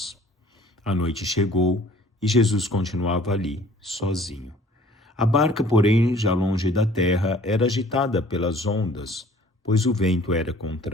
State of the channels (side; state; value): both; normal; correlation 0.53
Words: A noite chegou e Jesus continuava ali, sozinho. A barca, porém, já longe da terra, era agitada pelas ondas, pois o vento era